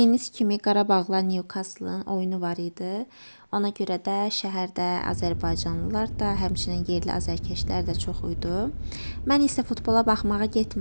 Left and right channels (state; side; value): inverted; both; correlation -1.00